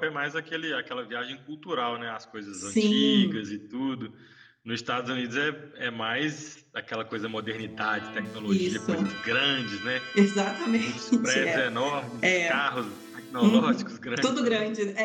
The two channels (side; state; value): both; identical; correlation 1.00